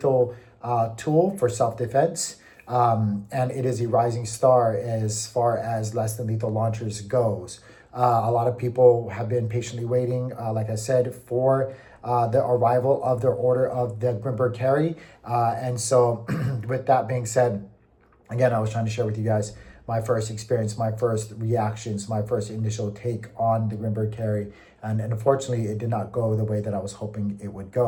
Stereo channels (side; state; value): both; identical; correlation 1.00